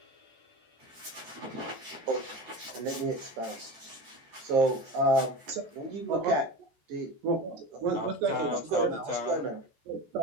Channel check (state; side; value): late; left; 14 ms